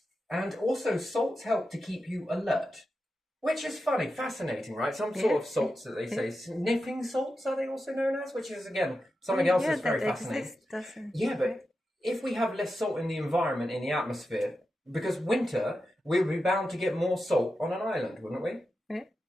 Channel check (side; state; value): both; normal; correlation 0.90